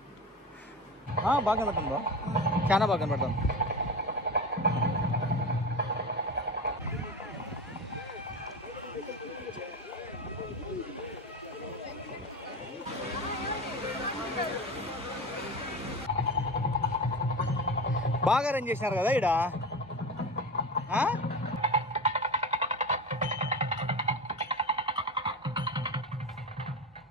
బాగా కనపడుతుంది బా, చాలా బాగా కనపడుతుంది. బాగా అరేంజ్ చేసినారు కదా ఈడ.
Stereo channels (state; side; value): normal; both; correlation 0.25